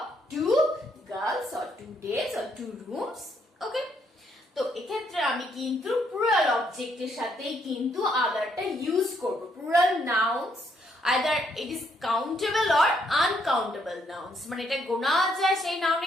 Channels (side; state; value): both; normal; correlation 0.72